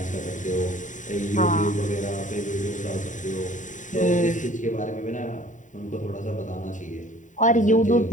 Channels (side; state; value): right; late; 0.36 ms